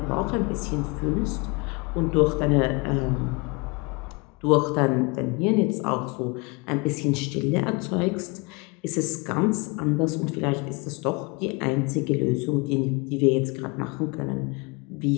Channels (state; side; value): quieter; right; 28.5 dB